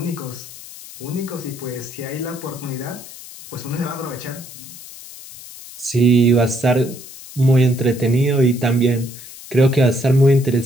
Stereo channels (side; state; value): left; noise; hiss, 16 dB below the sound